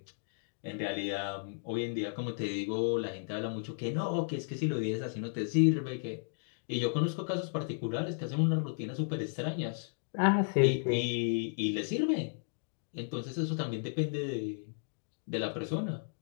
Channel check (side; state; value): right; silent; digital silence